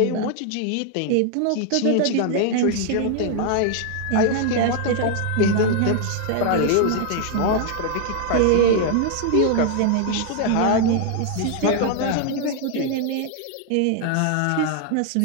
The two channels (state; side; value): different; both; correlation 0.00